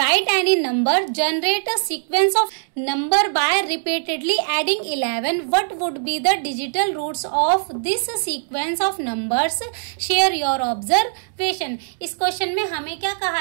any number generate a sequence of number by repeatedly adding 11। What would be the digital roots of this sequence of numbers, share your observation. इस question में हमें क्या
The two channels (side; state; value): left; silent; digital silence